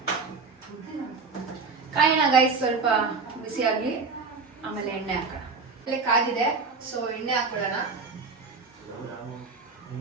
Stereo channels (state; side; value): quieter; left; 4.5 dB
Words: ಕಾಯೋಣ ಗೈಸ್, ಸ್ವಲ್ಪ ಬಿಸಿ ಆಗಲಿ, ಆಮೇಲೆ ಎಣ್ಣೆ ಹಾಕೋಣ. ಆಮೇಲೆ ಕಾದಿದೆ, ಸೊ ಎಣ್ಣೆ ಹಾಕೊಳ್ಳೋಣ.